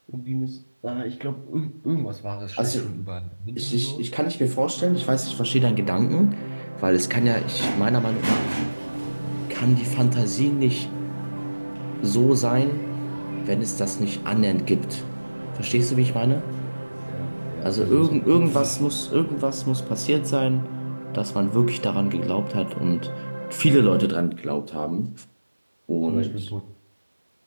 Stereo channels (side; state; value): both; inverted; correlation -1.00